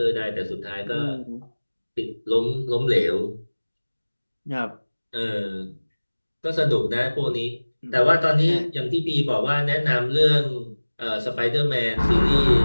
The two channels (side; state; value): both; inverted; correlation -1.00